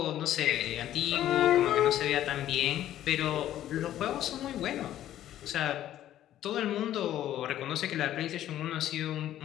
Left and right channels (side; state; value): right; quieter; 12.4 dB